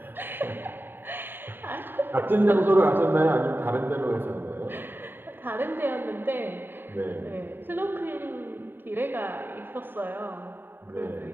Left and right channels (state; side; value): late; left; 0.095 ms